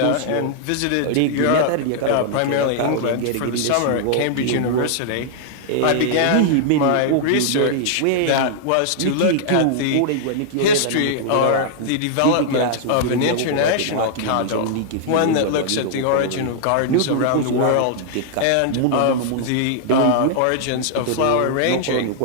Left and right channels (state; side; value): different; both; correlation -0.01